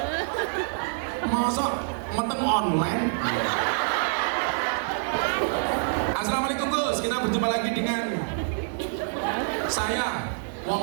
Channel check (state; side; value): silent; left; digital silence